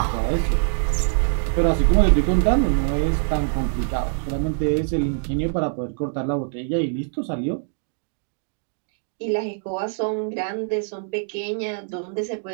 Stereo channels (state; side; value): silent; left; digital silence